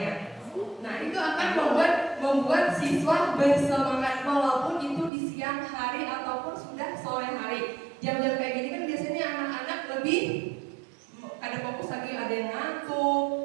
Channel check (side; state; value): left; drops out; at 5.1 s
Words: Nah, itu akan membuat siswa bersemangat walaupun itu di siang hari ataupun sudah sore hari. Jam-jam kayak gini kan biasanya anak-anak lebih ada fokus lagi, ada yang